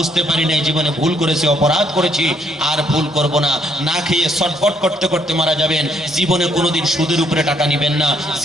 পারি নাই, জীবনে ভুল করেছি, অপরাধ করেছি, আর ভুল করব না। না খেয়ে ছটফট করতে করতে মারা যাবেন। জীবনে কোনোদিন সুদের উপরে টাকা নিবেন না,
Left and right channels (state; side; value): normal; both; correlation 0.70